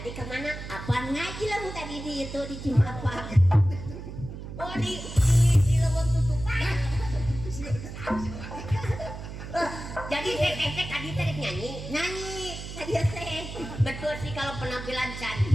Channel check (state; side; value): noise; right; hum, 10 dB below the sound